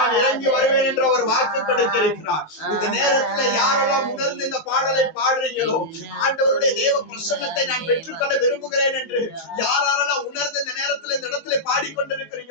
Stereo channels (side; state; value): right; late; 19 ms